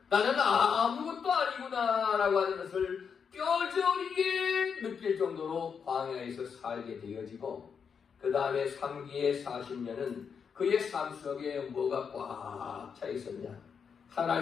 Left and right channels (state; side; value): quieter; right; 6.5 dB